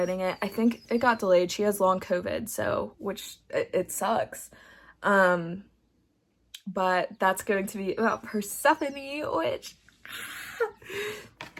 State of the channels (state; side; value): identical; both; correlation 1.00